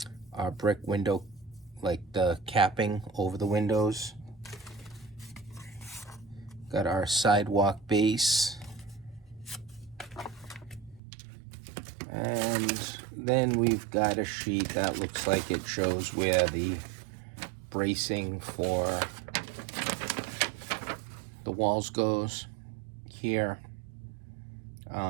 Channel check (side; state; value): left; drops out; at 11.0 s